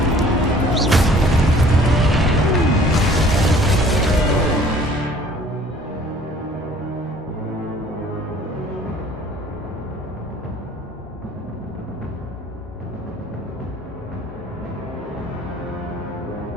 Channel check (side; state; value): both; normal; correlation 0.53